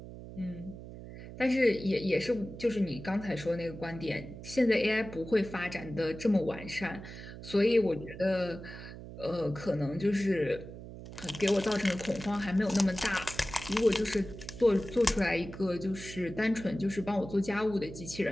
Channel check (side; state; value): right; noise; hum, 13 dB below the sound